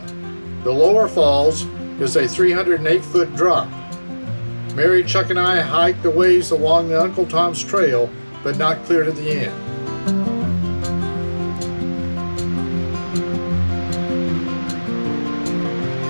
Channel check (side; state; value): both; inverted; correlation -1.00